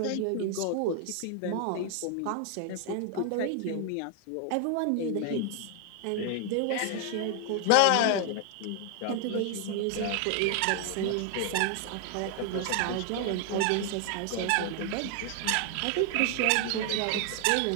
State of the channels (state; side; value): different; both; correlation 0.00